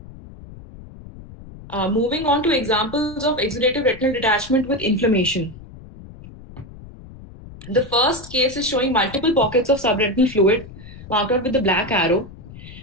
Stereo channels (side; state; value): left; noise; rumble, 17 dB below the sound